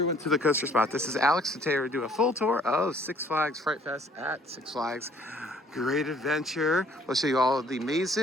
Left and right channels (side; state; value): both; normal; correlation 0.59